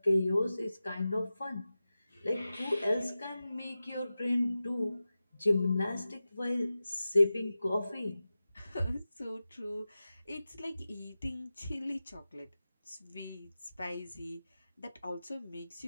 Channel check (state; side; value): inverted; both; correlation -0.94